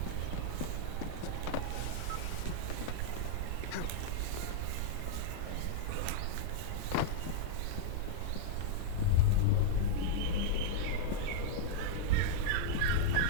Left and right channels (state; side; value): different; both; correlation -0.01